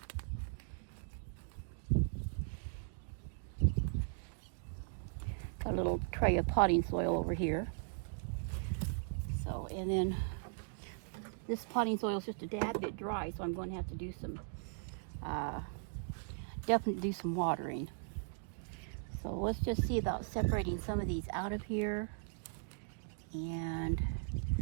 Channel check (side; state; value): left; silent; digital silence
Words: Got a little tray of potting soil over here. So, and then this potting soil is just a tad bit dry, so I'm going to have to do some, definitely do some watering. So let's just see about separating some of these out of here and